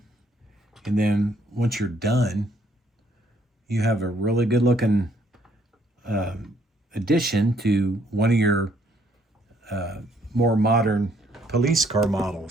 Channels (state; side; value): normal; both; correlation 0.67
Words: and then once you're done, you have a really good looking addition to one of your more modern police car